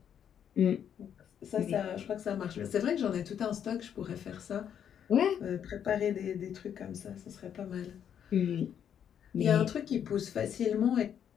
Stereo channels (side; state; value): right; quieter; 8.8 dB